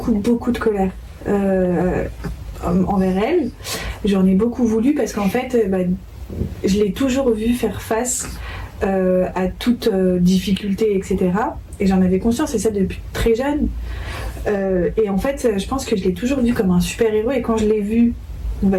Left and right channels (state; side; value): identical; both; correlation 1.00